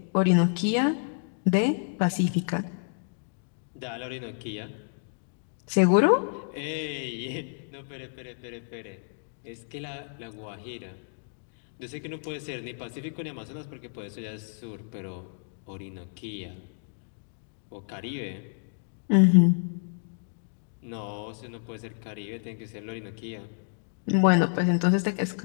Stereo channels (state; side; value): silent; right; digital silence